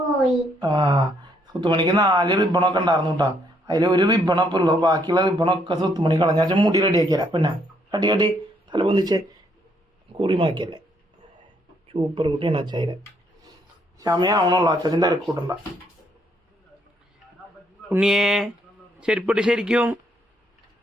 ആ, സ്വത്തുമണിക്ക് 4 റിബണൊക്കെ ഉണ്ടായിരുന്നു കേട്ടാ. അതിൽ ഒരു റിബണൊക്കെ ഉള്ളു. ബാക്കിയുള്ള റിബണൊക്കെ സ്വത്തുമണി കളഞ്ഞാൽ മുടി റെഡിയാക്കിയല്ല. പിന്നെ കട്ടി കട്ടി തല പൊന്തിച്ച് കുറിമാക്കിയല്ലേ. സൂപ്പർ കുട്ടിയാണ് അച്ചായിരെ. സമയമാവണുള്ളൂ. അച്ഛൻ്റെ തിരക്കൂട്ടണ്ട. ഉണ്ണിയേ ചെരുപ്പിട്ട് ശരിക്കും.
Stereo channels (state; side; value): normal; both; correlation 0.70